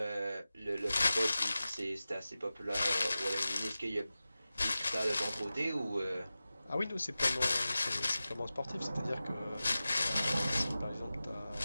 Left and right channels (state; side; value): inverted; both; correlation -0.95